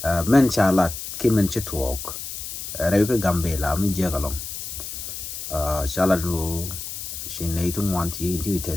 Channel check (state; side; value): noise; left; hiss, 8 dB below the sound